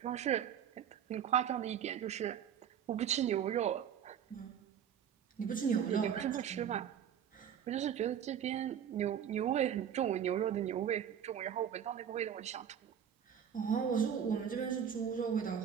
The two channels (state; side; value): quieter; left; 8.8 dB